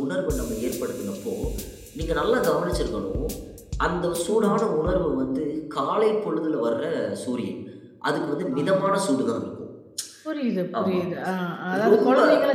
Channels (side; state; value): both; identical; correlation 1.00